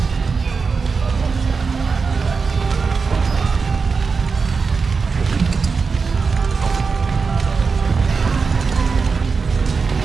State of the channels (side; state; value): left; quieter; 4.9 dB